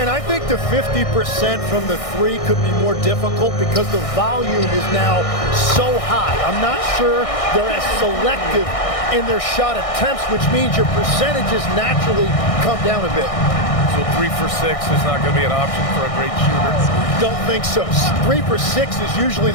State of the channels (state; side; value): late; right; 1.6 ms